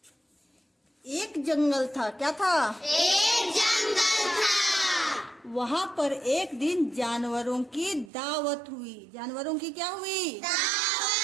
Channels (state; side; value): drops out; left; at 8.1 s